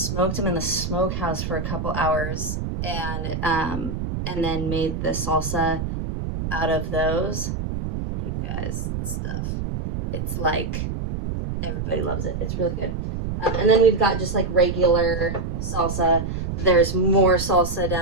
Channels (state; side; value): noise; right; rumble, 4 dB below the sound